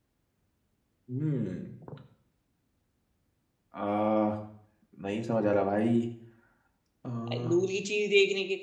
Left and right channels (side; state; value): both; identical; correlation 1.00